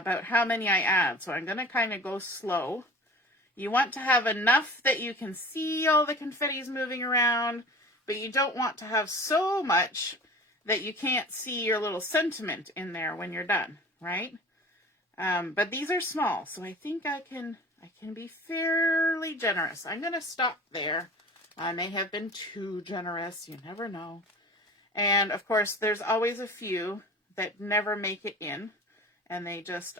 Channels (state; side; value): normal; both; correlation 0.40